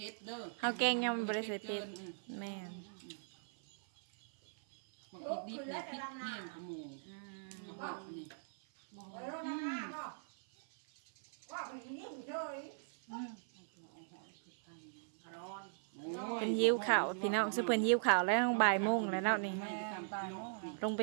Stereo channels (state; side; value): silent; left; 51 dB below the other